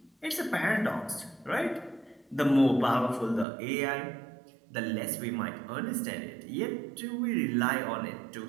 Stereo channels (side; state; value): left; drops out; at 3.5 s